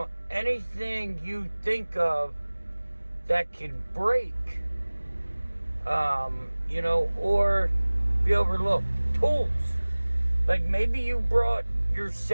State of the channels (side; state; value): both; inverted; correlation -1.00